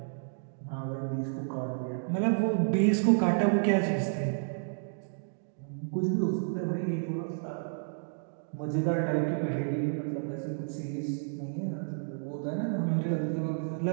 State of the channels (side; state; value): left; silent; digital silence